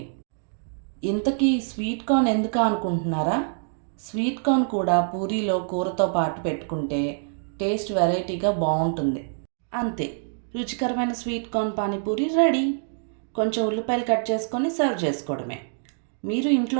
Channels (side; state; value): left; silent; digital silence